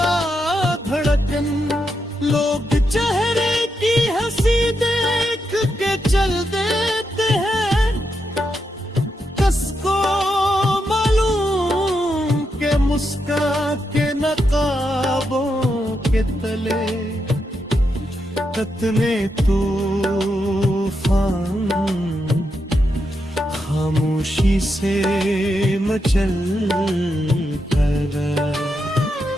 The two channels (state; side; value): normal; both; correlation 0.83